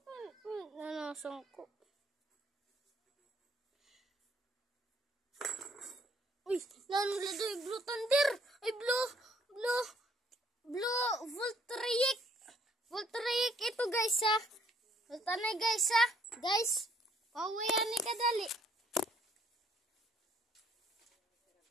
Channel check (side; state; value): both; normal; correlation 0.65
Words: Uy, nanulad ay Blue Thunder. Ay, Blue Voltaic. Voltaic ito guys ha. Voltaic guys ha. Guys, pawayan ni kadali.